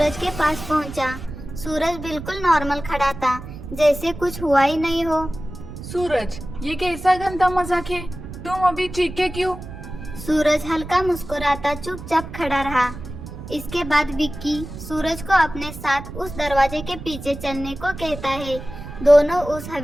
के पास पहुंचा। सूरज बिल्कुल नॉर्मल खड़ा था, जैसे कुछ हुआ ही नहीं हो। सूरज, ये कैसा गंदा मजाक है? तुम अभी चीखे क्यों? सूरज हल्का मुस्कुराता चुपचाप खड़ा रहा। इसके बाद विक्की सूरज को अपने साथ उस दरवाजे के पीछे चलने को कहता है। दोनों उस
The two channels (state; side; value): noise; right; rumble, 11 dB below the sound